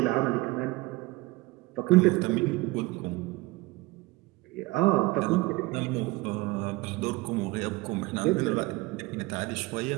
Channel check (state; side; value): quieter; left; 21.3 dB